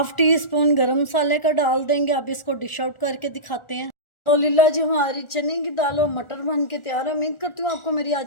टी स्पून गरम मसाले का डाल देंगे। अब इसको डिश आउट करके दिखाते हैं। अल्हम्दुलिल्लाह जी, हमारी चने की दाल और मटर बन के तैयार है। उम्मीद करती हूँ आपको मेरी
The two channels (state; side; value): late; right; 1.4 ms